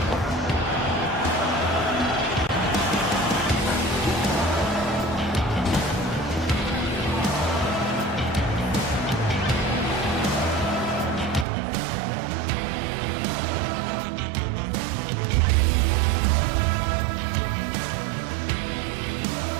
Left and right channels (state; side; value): drops out; left; at 11.5 s